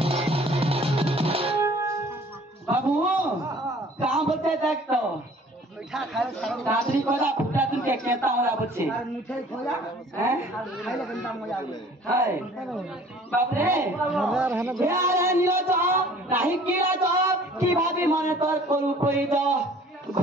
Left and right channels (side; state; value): both; normal; correlation 0.52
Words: बाबू कहाँ बच्चे देख तो मीठा खाए सारा दादरी खोजा फुटा तुम के कहता हूँ बच्चे और मिठाई खोजा हैं और खाइले गंदा मजा आवे हाय बाप रे यार नीला तो नहीं किला तो की भाभी माने तोर करू कोई तो